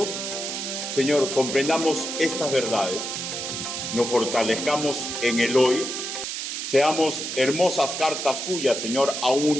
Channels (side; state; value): right; noise; hiss, 4 dB below the sound